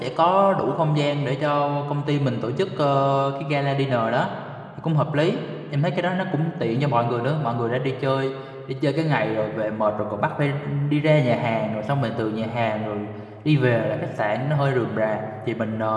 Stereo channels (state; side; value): identical; both; correlation 1.00